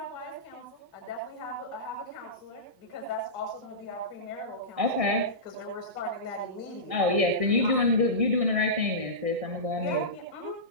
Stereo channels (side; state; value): left; late; 1.6 ms